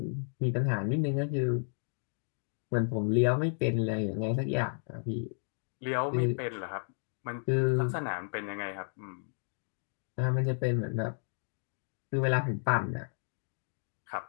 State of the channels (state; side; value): silent; right; digital silence